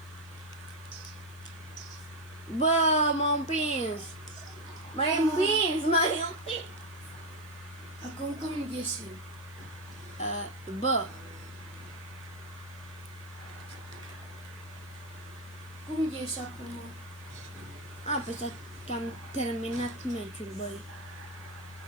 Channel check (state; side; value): noise; left; hiss, 25 dB below the sound